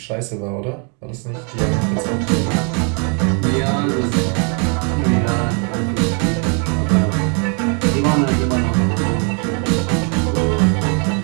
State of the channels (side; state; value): left; quieter; 38.9 dB